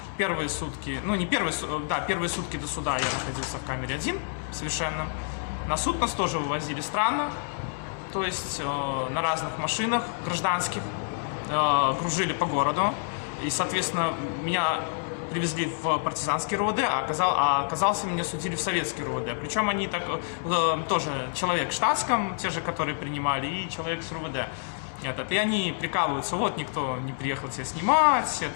первые сутки, ну не первые, да, первые сутки до суда я находился в камере один совершенно. На суд нас тоже вывозили странно, то есть на разных машинах гражданских, кружили по городу. И, соответственно, меня привезли в партизанский РУВД, а оказался, меня судили в советский РУВД. Причем они так, тоже человек в штатском, те же, которые принимали, и человек с РУВД. И они прикалываются, вот никто не приехал тебя снимать,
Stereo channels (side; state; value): right; silent; 59 dB below the other